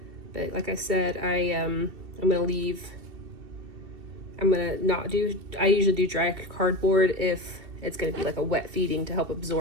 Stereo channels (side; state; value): left; late; 2.7 ms